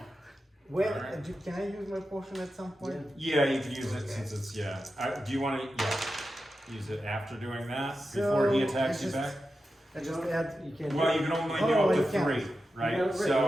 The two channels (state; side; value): normal; both; correlation 0.91